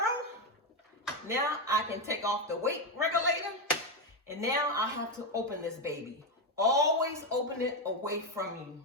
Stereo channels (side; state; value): both; normal; correlation 0.09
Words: Now I can take off the weight regulator and now I have to open this baby. Always open it away from you.